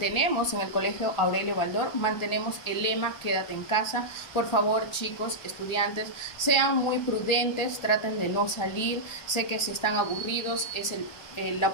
en el Colegio Aurelio Baldor, mantenemos el lema quédate en casa. Por favor, chicos, estudiantes, sean muy prudentes, traten de no salir. Sé que si están aburridos es la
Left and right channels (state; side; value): late; right; 1.4 ms